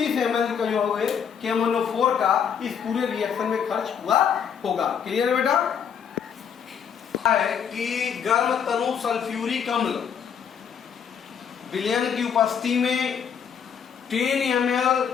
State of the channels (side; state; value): right; quieter; 7.6 dB